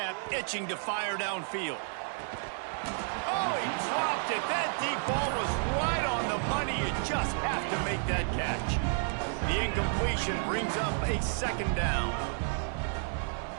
itching to fire downfield. Oh, he dropped it. That deep ball was right on the money. You just have to make that catch. The incompletion brings up a second down.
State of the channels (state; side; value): silent; left; 57 dB below the other